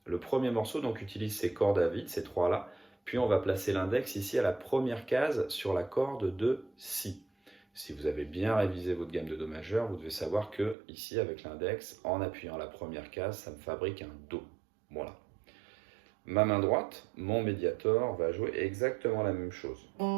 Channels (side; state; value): left; drops out; at 10.8 s